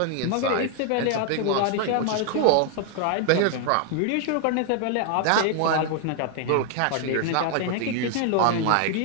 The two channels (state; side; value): different; both; correlation 0.00